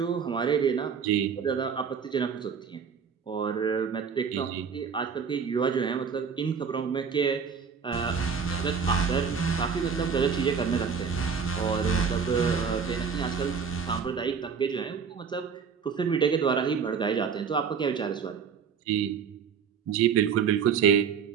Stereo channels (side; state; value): left; quieter; 6.4 dB